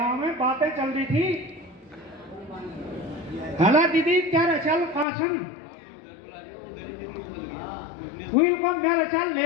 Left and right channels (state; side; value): drops out; right; at 5.1 s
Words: में बातें चल रही थी। हला दीदी क्या रचल कासन हुई को मैं रचल ले